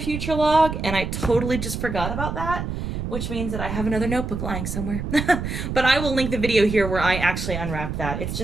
log, and I totally just forgot about that, which means that I have another notebook lying somewhere. But I will link the video here where I actually unwrapped that. It's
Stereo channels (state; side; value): noise; right; rumble, 5 dB below the sound